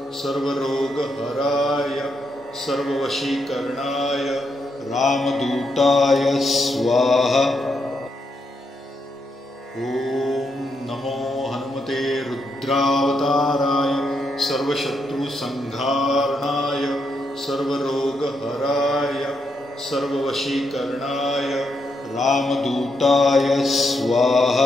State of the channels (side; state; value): both; normal; correlation 0.80